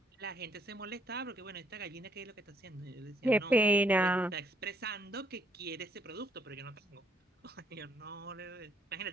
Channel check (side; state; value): both; normal; correlation 0.70